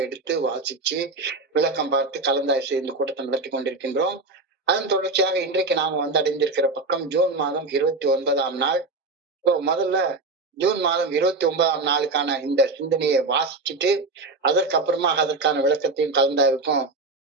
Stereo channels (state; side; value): quieter; left; 3.6 dB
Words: எடுத்து வாசிச்சு விளக்கம் பார்த்து கலந்தாய்வு இந்த கூட்டத்தை நடத்தி கொண்டிருக்கின்றோம். அதன் தொடர்ச்சியாக இன்றைக்கு நாம அடைந்திருக்கிற பக்கம் ஜூன் மாதம் 29ஆம் நாள். முதல்ல ஜூன் மாதம் 29ஆம் நாளுக்கான இந்த சிந்தனையை வாசிச்சுட்டு அதற்கப்புறமா அதற்கான விளக்கத்தையும் கலந்தாய்வுக்கும்